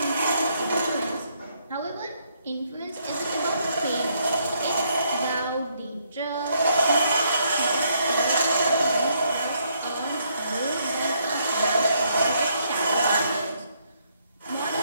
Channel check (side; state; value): both; inverted; correlation -0.72